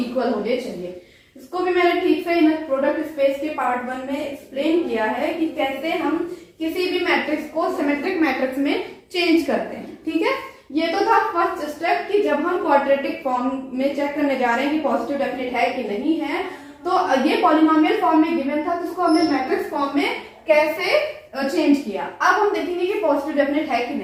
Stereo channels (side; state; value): both; identical; correlation 1.00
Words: होने चाहिए। इसको भी मैंने ठीक से इन प्रोडक्ट स्पेस के पार्ट 1 में एक्सप्लेन किया है कि कैसे हम किसी भी मैट्रिक्स को सिमेट्रिक मैट्रिक्स में चेंज करते हैं, ठीक है। ये तो था फर्स्ट स्टेप कि जब हम क्वाड्रेटिक फॉर्म में चेक करने जा रहे हैं कि पॉजिटिव डेफिनेट है कि नहीं है, तो ये पॉलिनोमियल फॉर्म में गिवन था, तो उसको हमने मैट्रिक्स फॉर्म में कैसे चेंज किया। अब हम देखेंगे कि पॉजिटिव डेफिनेट है कि